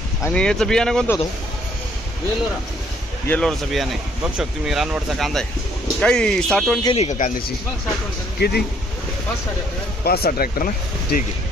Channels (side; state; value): both; normal; correlation 0.65